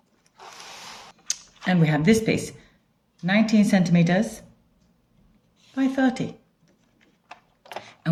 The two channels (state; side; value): identical; both; correlation 1.00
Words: And we have this piece, 19 centimeters by 30.